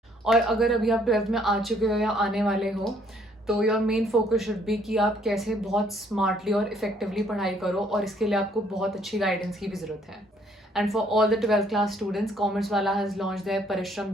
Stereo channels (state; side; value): normal; both; correlation 0.64